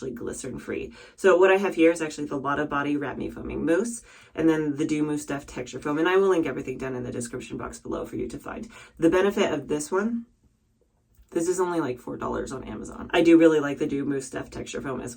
glycerin free. So what I have here is actually the Lotta Body Wrap Me Foaming Mousse, and then the Dew Mousse Deft Texture Foam. And I will link everything down in the description box below for you to find. The benefit of this one, this is only like $4 on Amazon. I do really like the Dew Mousse Deft Texture Foam as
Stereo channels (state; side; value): identical; both; correlation 1.00